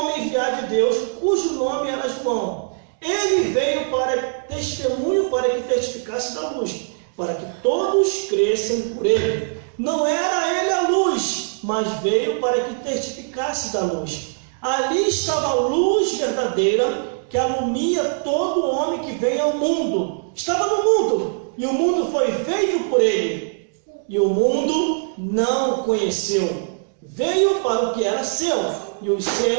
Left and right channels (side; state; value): left; silent; digital silence